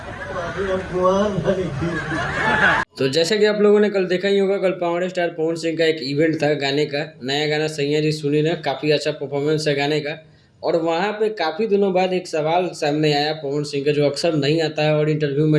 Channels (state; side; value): identical; both; correlation 1.00